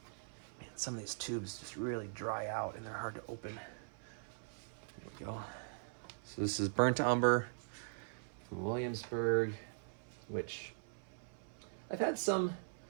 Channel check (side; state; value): left; silent; 50 dB below the other